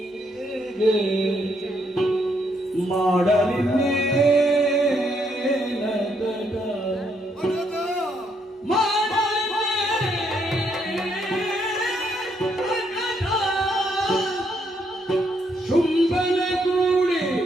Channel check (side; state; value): both; normal; correlation 0.74